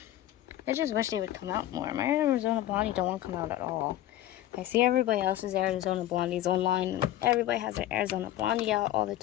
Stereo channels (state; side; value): quieter; right; 13.7 dB